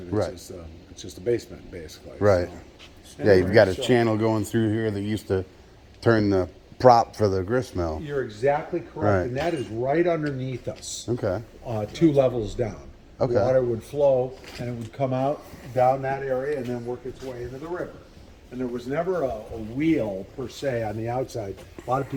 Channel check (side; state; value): both; identical; correlation 1.00